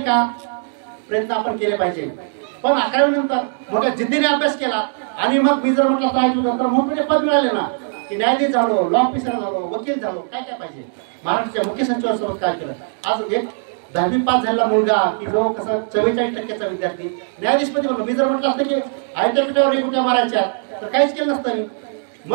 का? प्रयत्न आपण केले पाहिजे. पण 11वी नंतर मोठ्या जिद्दीने अभ्यास केला आणि मग मी जर म्हटलं पाहिजे तर मोठे पद मिळाले ना, की न्यायाधीश झालो, लॉ ऑफिसर झालो, वकील झालो, काय काय पाहिजे. महाराष्ट्राच्या मुख्य सचिवांसोबत काय केलं. आज एक 10वी पास झालेला मुलगा की जो कसं 44% विद्यार्थी न्यायाधीशपदी बनलो. मी जर म्हटलं असतं की आयत्या पिठावर रेगोठ्या मारायच्या तर काहीच केलं नसतं मी.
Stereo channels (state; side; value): silent; left; digital silence